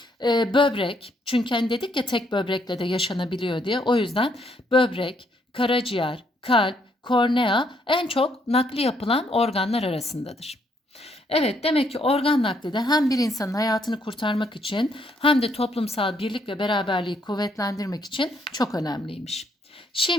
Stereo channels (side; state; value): both; normal; correlation 0.71